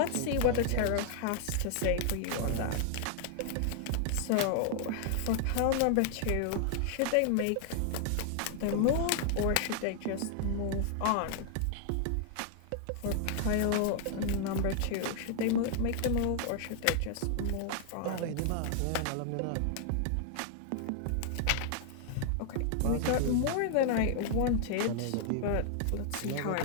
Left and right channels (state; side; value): different; both; correlation 0.00